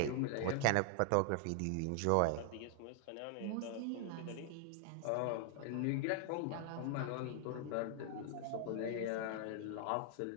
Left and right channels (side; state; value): both; different; correlation 0.00